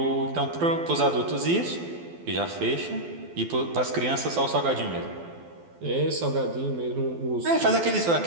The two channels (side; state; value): left; late; 12 ms